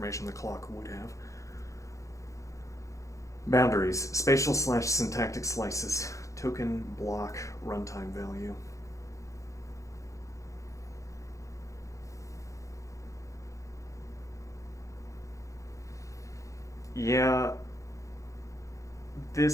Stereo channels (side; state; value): right; late; 0.15 ms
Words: the clock would have. Boundaries, spatial/syntactic slices, token, block, runtime value. Yeah,